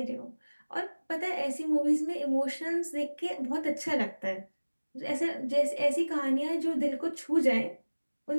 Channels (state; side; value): inverted; both; correlation -1.00